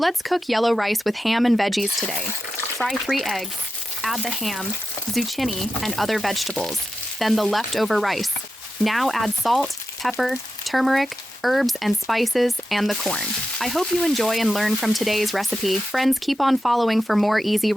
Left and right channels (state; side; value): normal; both; correlation 0.90